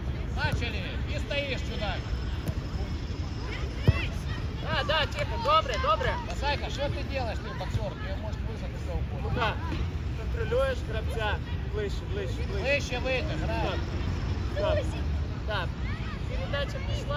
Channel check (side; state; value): both; identical; correlation 1.00